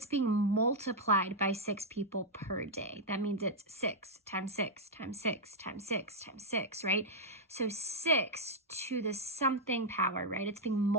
being multiplied by 6 people per day. That means it's 6 times 6 times 6 times 6 times 6, right? So 6 to the something power, right? It's being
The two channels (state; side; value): normal; both; correlation -0.03